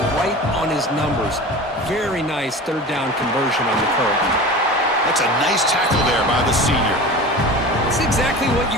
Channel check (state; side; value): normal; both; correlation 0.34